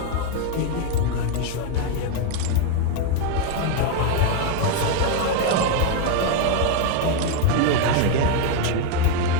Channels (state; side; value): different; both; correlation 0.01